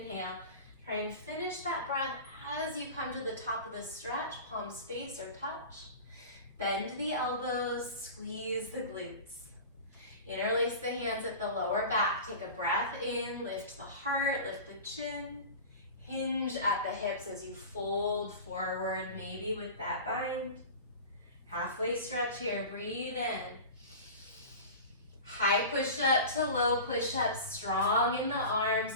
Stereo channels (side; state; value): both; inverted; correlation -0.34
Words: Try and finish that breath as you come to the top of the stretch, palms face or touch. Bend the elbows, squeeze the glutes. Interlace the hands at the lower back. Take a breath in, lift the heart, lift the chin. Hinge at the hips as you fold forward, maybe with that bind. Halfway stretch here, breathe in. High push up to low push up, strong in the arms